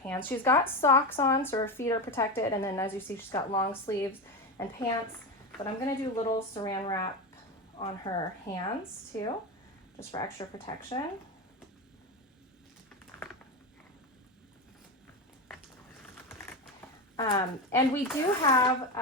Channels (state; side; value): normal; both; correlation 0.18